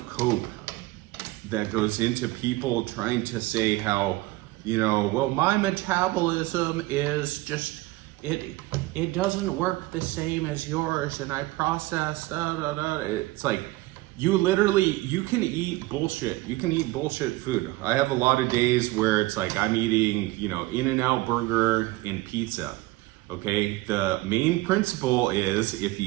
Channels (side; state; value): left; quieter; 19.8 dB